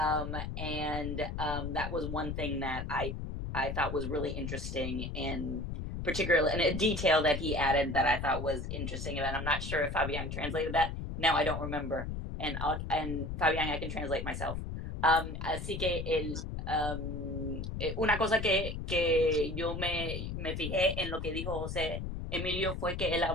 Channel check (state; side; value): noise; left; rumble, 5 dB below the sound